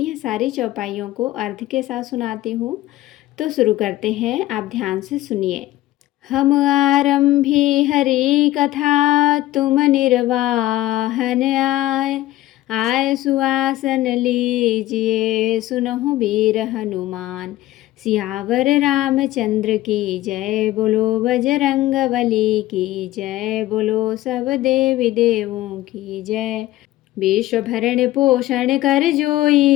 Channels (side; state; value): right; quieter; 15.8 dB